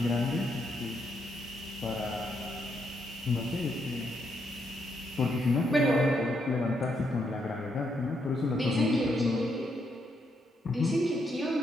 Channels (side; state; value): both; normal; correlation 0.78